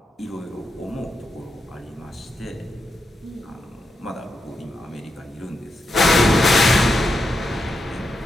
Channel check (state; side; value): normal; both; correlation 0.85